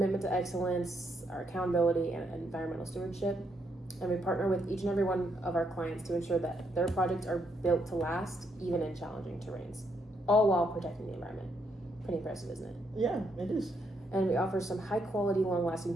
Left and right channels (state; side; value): normal; both; correlation 0.76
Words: to excellence, our accountability, and environmental stewardship, and we partner with each and every one of our clients to ensure that their projects are built to last, even in challenging terrains, all while protecting the environment. Pretty impressive, isn't it? Yeah, it is. And we offer some high-quality,